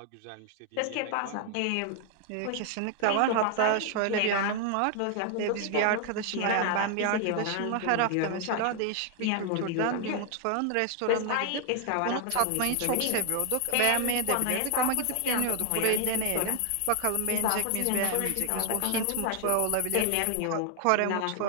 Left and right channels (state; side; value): different; both; correlation 0.00